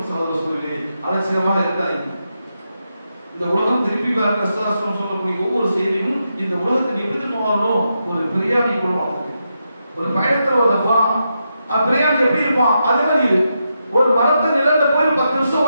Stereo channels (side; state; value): both; inverted; correlation -0.85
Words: சகோதர சொல்லி அலட்சியமாக இருக்காங்க. இந்த உலகம் திருப்பி சொல்லக்கூடிய ஒவ்வொரு செய்தியும் இந்த உலகத்தை எப்படி போகணும்? ஒரு பிரியாணி கொள்வாங்க. ஒரு பயணத்துல வந்தப்பா பிரியாணி எப்படி இருப்பான்? அதே மாதிரி ஒரு மரத்து நிழல்ல போய் 10 நிமிஷம்